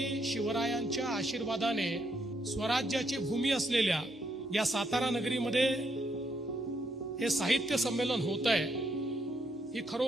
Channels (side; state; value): both; normal; correlation 0.75